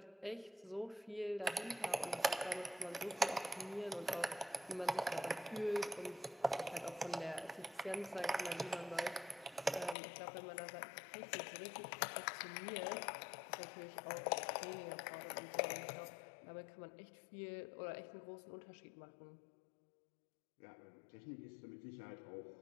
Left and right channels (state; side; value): drops out; right; at 10.0 s